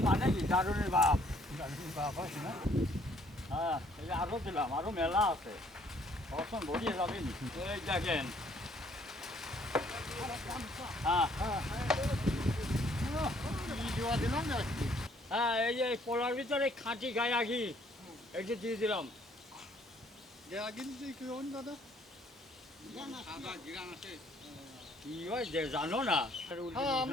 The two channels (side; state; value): both; normal; correlation 0.63